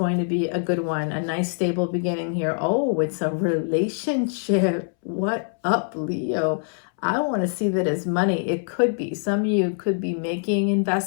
to be a good one. A nice stable beginning here. Oh, it's a relationship. What up, Leo? I want to see that as money. It could be. Some of you could be making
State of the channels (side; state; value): right; silent; 63 dB below the other